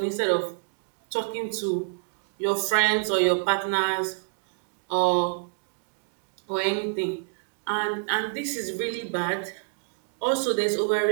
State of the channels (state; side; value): quieter; left; 39.6 dB